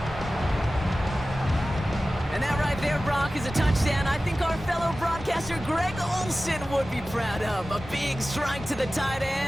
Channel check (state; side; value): normal; both; correlation 0.96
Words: And that right there, Brock, is a touchdown I think our fellow broadcaster Greg Olsen would be proud of. A big strike to the tight